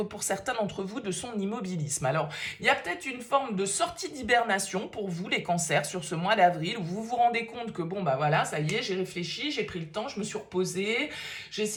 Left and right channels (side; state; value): both; identical; correlation 1.00